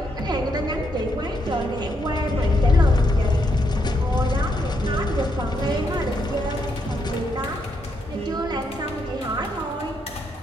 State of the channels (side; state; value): both; normal; correlation 0.77